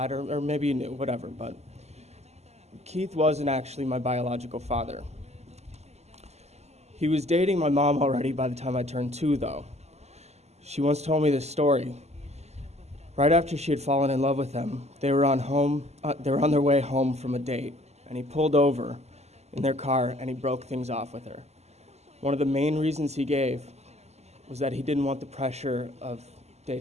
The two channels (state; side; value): late; left; 0.32 ms